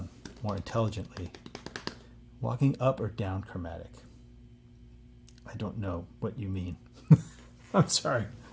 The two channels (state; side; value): identical; both; correlation 1.00